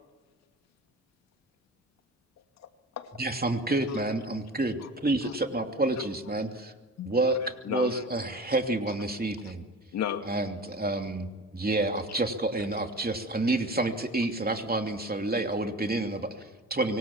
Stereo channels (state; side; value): normal; both; correlation 0.36